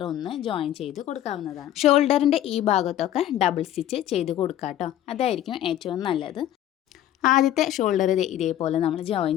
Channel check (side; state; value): right; quieter; 12.2 dB